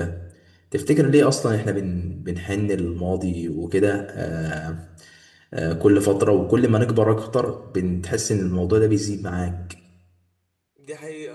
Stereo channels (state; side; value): identical; both; correlation 1.00